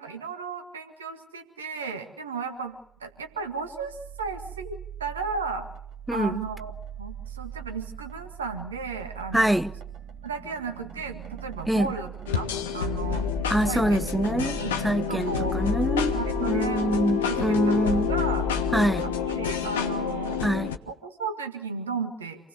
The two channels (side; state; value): both; normal; correlation 0.47